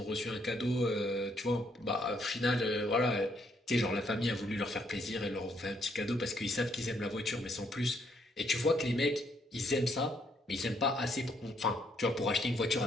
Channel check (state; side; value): normal; both; correlation 0.71